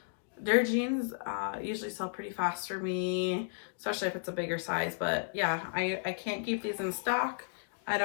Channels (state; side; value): silent; right; digital silence